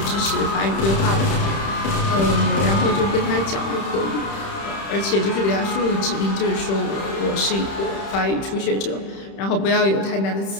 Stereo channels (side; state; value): right; late; 31 ms